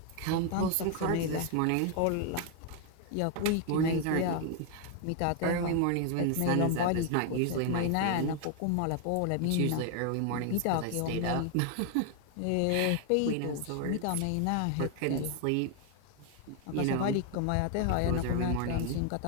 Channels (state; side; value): different; both; correlation 0.00